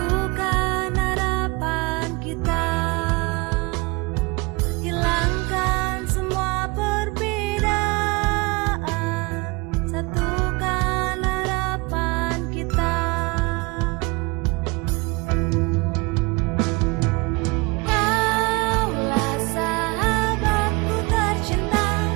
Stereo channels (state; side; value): quieter; left; 26.6 dB